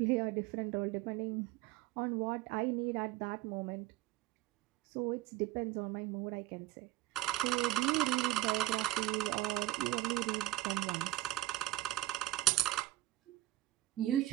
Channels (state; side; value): quieter; left; 15.7 dB